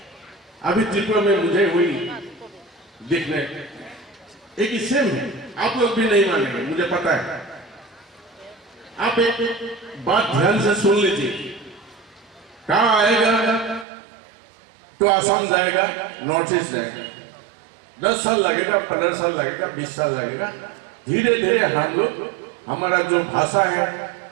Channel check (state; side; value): drops out; left; at 13.9 s